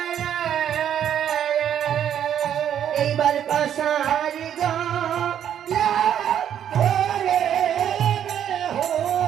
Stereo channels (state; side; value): quieter; left; 9.7 dB